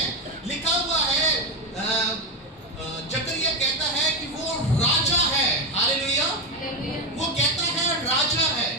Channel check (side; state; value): both; normal; correlation 0.12